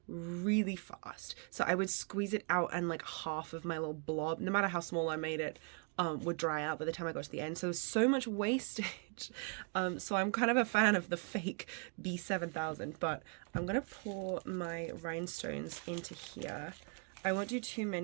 really fast, so I would squeeze it out and like half of my little blob, no matter how small I made it, would dry out by the time I got to the end. So there's so much wastage. So I'm kind of a fan of the fake B7000, but I'm gonna pour my rhinestones into here. I won't do too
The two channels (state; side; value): quieter; left; 37.5 dB